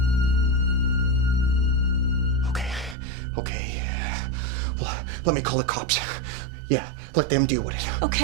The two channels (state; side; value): drops out; left; at 3.0 s